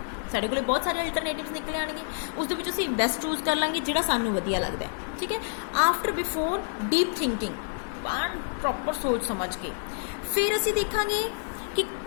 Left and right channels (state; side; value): silent; right; digital silence